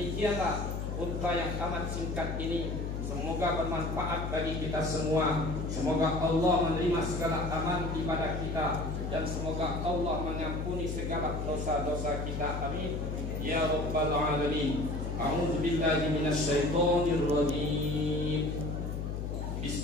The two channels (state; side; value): noise; left; hum, 3 dB below the sound